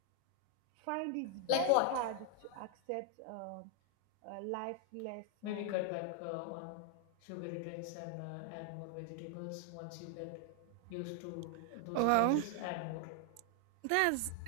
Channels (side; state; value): both; different; correlation 0.00